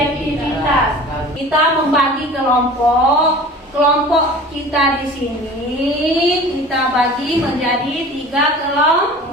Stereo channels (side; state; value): both; normal; correlation 0.41